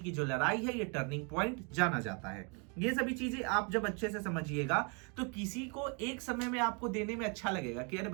जो लड़ाई है, ये टर्निंग पॉइंट जाना जाता है। ये सभी चीजें आप जब अच्छे से समझिएगा तो किसी को एक समय में आपको देने में अच्छा लगेगा कि अरे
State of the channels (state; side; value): quieter; left; 35.0 dB